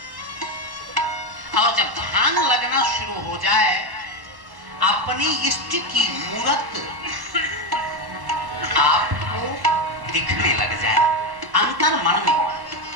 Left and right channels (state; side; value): late; left; 1.1 ms